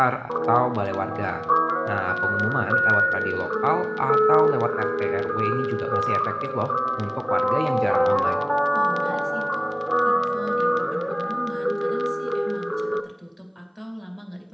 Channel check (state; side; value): identical; both; correlation 1.00